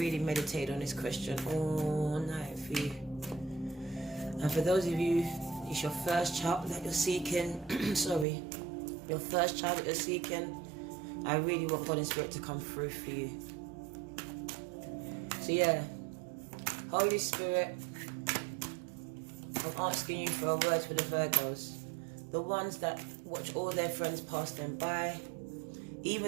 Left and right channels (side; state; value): left; drops out; at 8.2 s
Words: meditated on this question all night for you. And for those of you, it's your first child that you're seeking, sorry, your first child that you're seeking, I really want God and Spirit to come through for you. So yeah, Holy Spirit, I'm asking you for a word for the Virgos. The ones that watch all their friends pass them by,